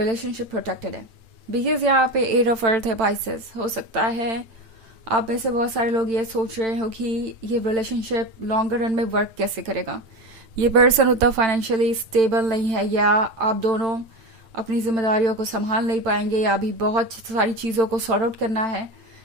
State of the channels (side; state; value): left; late; 8.9 ms